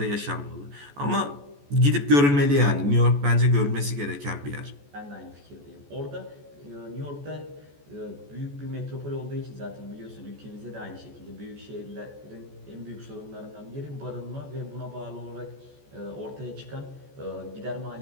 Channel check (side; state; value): left; late; 14 ms